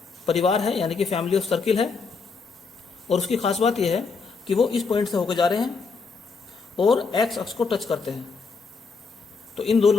परिवार है यानी कि फैमिली ऑफ सर्किल है, और उसकी खास बात यह है कि वो इस पॉइंट से होकर जा रहे हैं और एक्स अक्ष को टच करते हैं। तो इन दो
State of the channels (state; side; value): quieter; right; 4.8 dB